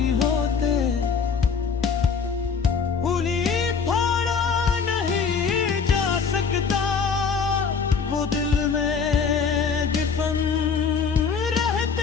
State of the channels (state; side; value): quieter; right; 5.8 dB